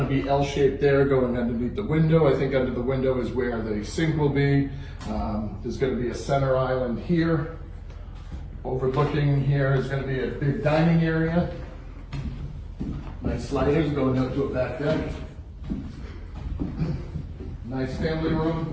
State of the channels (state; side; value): identical; both; correlation 1.00